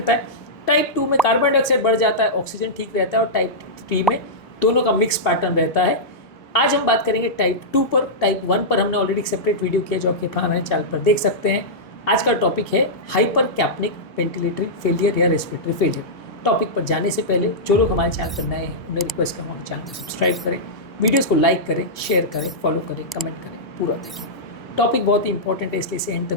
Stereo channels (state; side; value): normal; both; correlation -0.12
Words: है। टाइप 2 में कार्बन डाइऑक्साइड बढ़ जाता है, ऑक्सीजन ठीक रहता है। और टाइप 3 में दोनों का मिक्स पैटर्न रहता है। आज हम बात करेंगे टाइप 2 पर। टाइप 1 पर हमने ऑलरेडी एक सेपरेट वीडियो किया जो आपके हमारे चैनल पर देख सकते हैं। आज का टॉपिक है हाइपर कैप्निक वेंटिलेटरी फेलियर या रेस्पिरेटरी फेलियर। टॉपिक पर जाने से पहले जो लोग हमारे चैनल पर नए हैं उन्हें रिक्वेस्ट करूँगा हमारे चैनल को सब्सक्राइब करें, वीडियोज़ को लाइक करें, शेयर करें, फॉलो करें, कमेंट करें, पूरा देखिए। टॉपिक बहुत ही इंपॉर्टेंट है, इसलिए इसे एंड